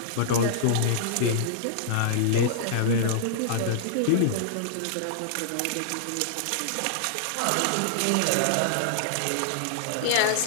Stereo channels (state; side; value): different; both; correlation -0.01